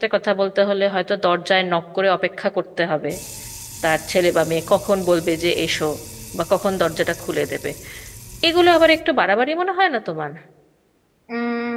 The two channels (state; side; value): identical; both; correlation 1.00